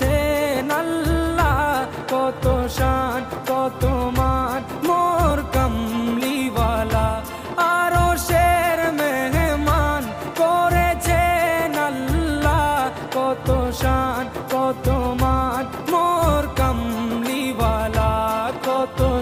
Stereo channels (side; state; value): both; identical; correlation 1.00